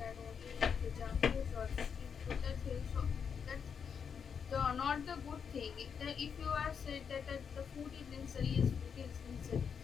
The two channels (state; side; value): quieter; right; 6.7 dB